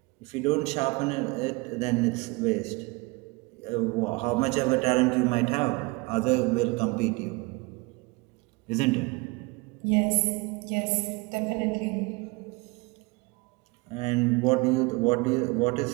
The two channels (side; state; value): left; quieter; 25.8 dB